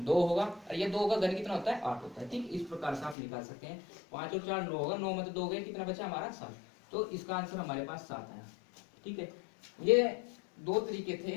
होगा, और ये 2 का घन कितना होता है, 8 होता है। ठीक, इस प्रकार से आप निकाल सकते हैं। 5 और 4 9 होगा, 9 में तो 2 गए, कितना बचा हमारा, 7। तो इसका आंसर हमारे पास 7 आया। ठीक है, ये 2 तरीके थे।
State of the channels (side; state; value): right; drops out; at 3.2 s